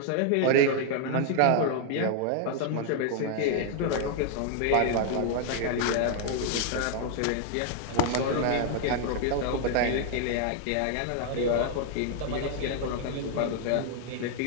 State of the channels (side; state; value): both; different; correlation 0.00